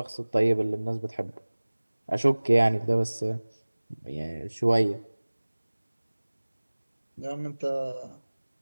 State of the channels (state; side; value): inverted; both; correlation -1.00